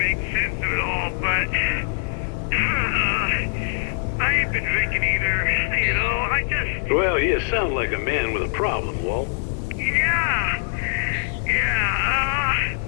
sense of it all, but, I ain't been drinking either, you know? I just... Well, you sound like a man with a problem, Walt.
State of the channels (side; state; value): right; silent; digital silence